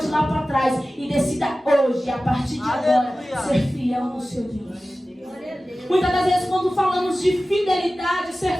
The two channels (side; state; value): both; normal; correlation 0.96